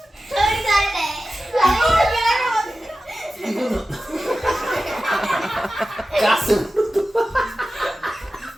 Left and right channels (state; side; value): normal; both; correlation 0.94